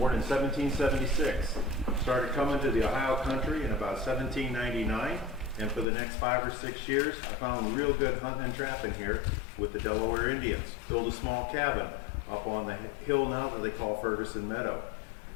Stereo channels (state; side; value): drops out; right; at 5.9 s